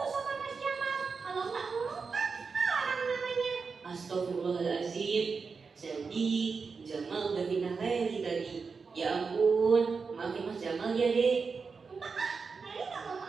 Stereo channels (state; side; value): quieter; left; 5.0 dB